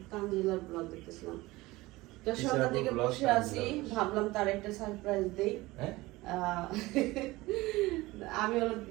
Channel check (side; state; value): left; quieter; 20.1 dB